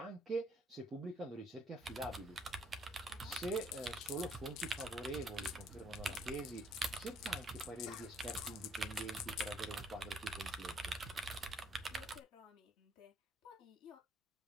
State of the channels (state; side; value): normal; both; correlation 0.65